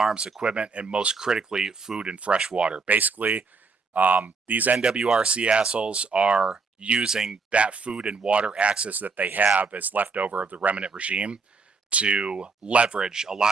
equipment, and most critically, food and fresh water. Basically, these NWRC assholes are using that food and water access that they have as leftover of the remnant regime to leverage a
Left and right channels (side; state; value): left; quieter; 4.6 dB